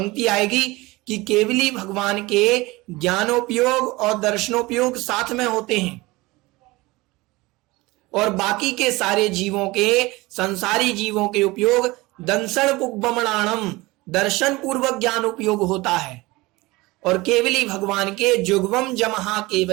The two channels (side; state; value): left; quieter; 21.5 dB